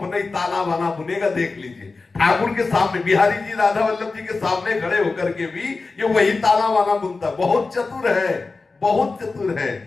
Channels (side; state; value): right; quieter; 3.9 dB